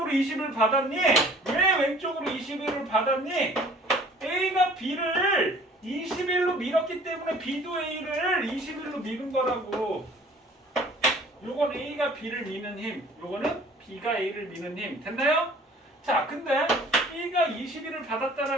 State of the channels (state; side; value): normal; both; correlation 0.51